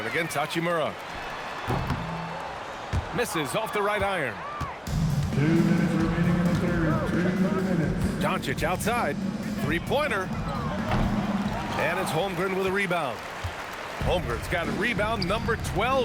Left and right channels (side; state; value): both; identical; correlation 1.00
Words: against Hachimura. Misses off the right iron. 2 minutes remaining in the third. 2 minutes. Doncic outside. Three-pointer. And it's Holmgren with a rebound. Holmgren's got a rebound number